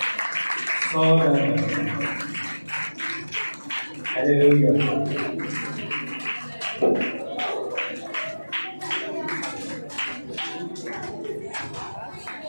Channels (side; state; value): both; inverted; correlation -1.00